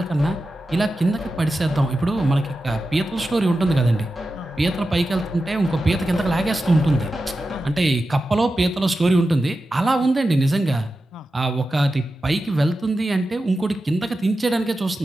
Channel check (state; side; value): normal; both; correlation 0.92